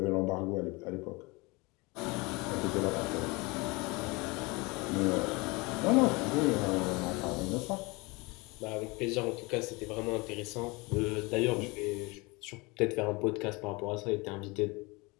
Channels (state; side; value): quieter; right; 25.7 dB